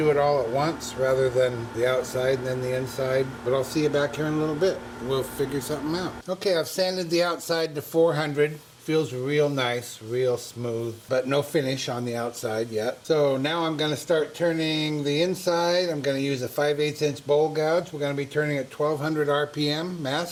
it all at once rather than the outside and then the inside. But I'll see you back here in a little bit. We'll figure something out. Okay, I've sanded the outside to 400. Feels real nice, real smooth, but no finish on the outside yet. So now I'm going to start turning the inside. I'm going to use a 5/8 inch bowl gouge. We're going to be turning at 1200 RPM,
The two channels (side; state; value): both; identical; correlation 1.00